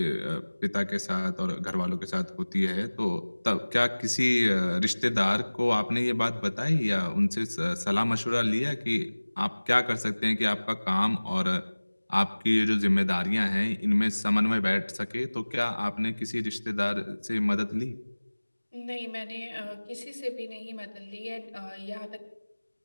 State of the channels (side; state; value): both; inverted; correlation -1.00